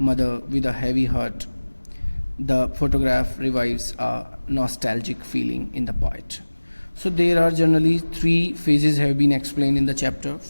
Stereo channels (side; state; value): both; inverted; correlation -1.00